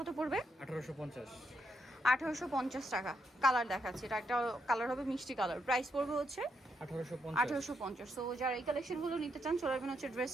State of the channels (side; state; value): both; normal; correlation 0.79